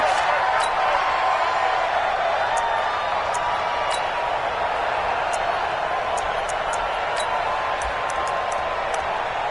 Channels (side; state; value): both; identical; correlation 1.00